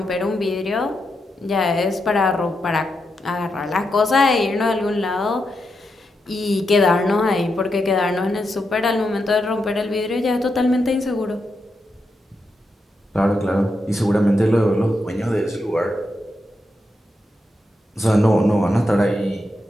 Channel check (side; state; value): both; normal; correlation 0.85